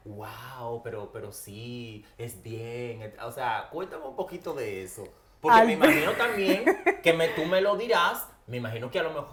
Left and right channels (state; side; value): identical; both; correlation 1.00